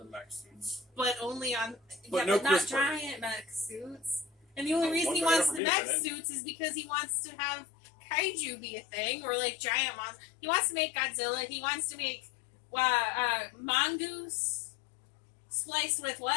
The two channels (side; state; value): right; drops out; at 5.6 s